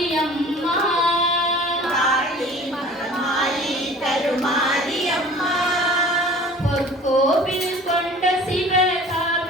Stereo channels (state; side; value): normal; both; correlation 0.46